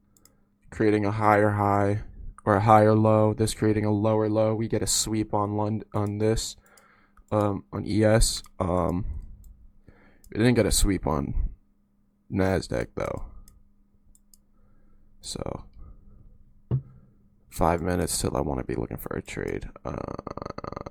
creating a higher high or a higher low. This creating a lower low. We get a sweep on this, on ES. We didn't get a sweep on NASDAQ though. So 5 minutes till I want to be looking for a trade.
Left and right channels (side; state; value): both; identical; correlation 1.00